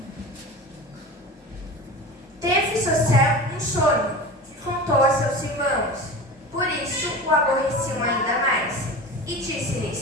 Teve José um sonho que contou a seus irmãos. Por isso o aborreciam ainda mais. E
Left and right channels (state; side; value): normal; both; correlation 0.32